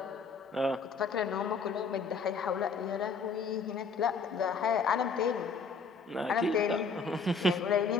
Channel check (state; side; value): quieter; right; 4.9 dB